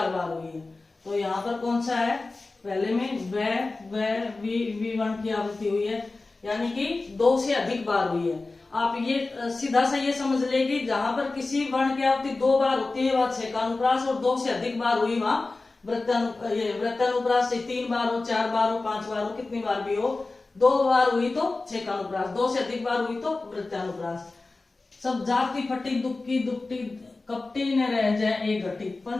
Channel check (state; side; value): quieter; right; 3.4 dB